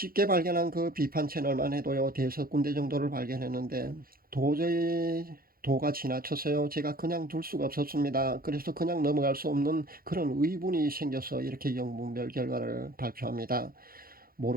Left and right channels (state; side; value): late; left; 0.42 ms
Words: 발견한 그 비판 채널만 해도요, 대여섯 군데 정도를 발견했는데, 도저히 도가 지나쳐서요, 제가 그냥 둘 수가 없었습니다. 그래서 그냥 넘어갈 수 없는 그런 의문이 생겨서 이렇게 영문별 결과를 발표합니다.